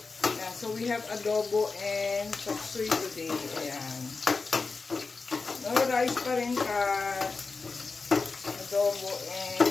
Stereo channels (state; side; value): quieter; right; 4.2 dB